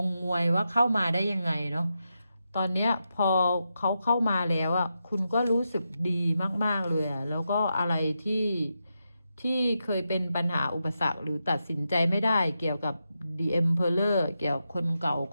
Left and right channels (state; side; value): inverted; both; correlation -0.87